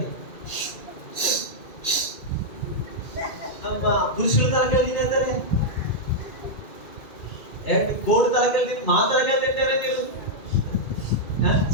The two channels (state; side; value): late; right; 2.3 ms